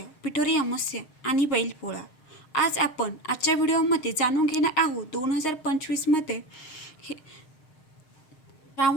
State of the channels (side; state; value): right; late; 6.5 ms